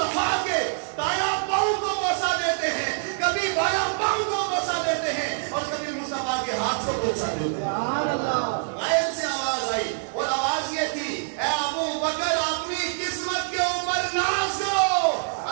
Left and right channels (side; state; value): left; silent; digital silence